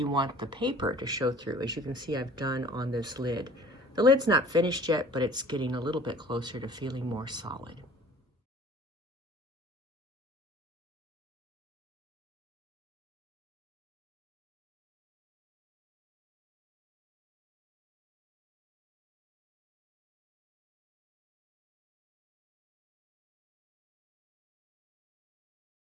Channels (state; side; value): normal; both; correlation 0.49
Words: want the paper to show through, as you can see I've done on this lid. The lid's not finished yet, but it's getting a little bit closer to feeling more solid.